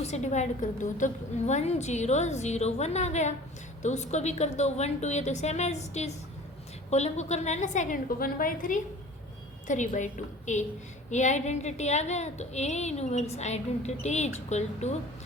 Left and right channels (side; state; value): both; normal; correlation 0.44